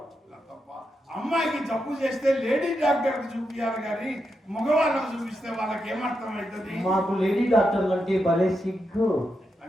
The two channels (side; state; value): both; normal; correlation 0.85